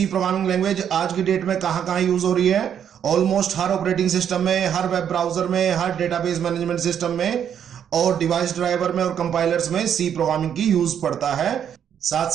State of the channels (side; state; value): left; quieter; 8.8 dB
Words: प्रोग्रामिंग लैंग्वेज आज की डेट में कहां कहां यूज हो रही है। ऑलमोस्ट हर ऑपरेटिंग सिस्टम में, हर वेब ब्राउजर में, हर डेटाबेस मैनेजमेंट सिस्टम में और डिवाइस ड्राइवर में और कंपाइलर्स में सी प्रोग्रामिंग की यूज पड़ता है। साथ